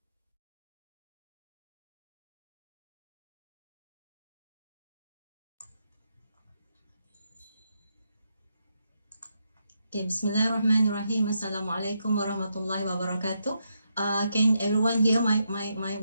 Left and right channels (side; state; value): both; inverted; correlation -0.82